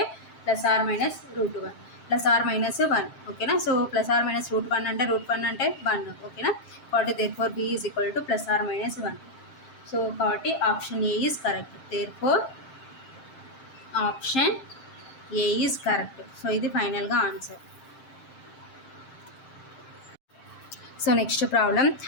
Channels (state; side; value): late; right; 7.6 ms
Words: plus or minus √1 plus or minus 1 ఓకేనా. So plus or minus √1 అంటే √1 అంటే 1 ఓకేనా. కాబట్టి therefore B is equal to plus or minus 1. So కాబట్టి option A is correct. Therefore option A is correct. So ఇది ఫైనల్గా answer. So next problem,